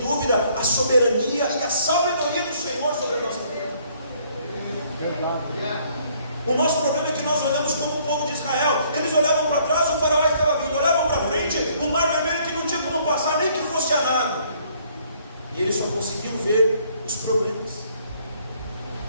a soberania e a sabedoria do Senhor sobre a nossa vida. O nosso problema é que nós olhamos como o povo de Israel. Eles olhavam para trás, o faraó estava vindo, olhavam para frente, o mar vermelho que não tinha como passar, nem que fosse a nada. E eles só conseguiam ver os problemas.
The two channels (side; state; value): both; inverted; correlation -0.63